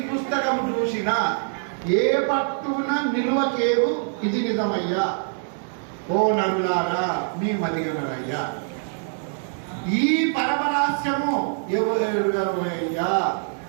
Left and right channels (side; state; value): left; silent; digital silence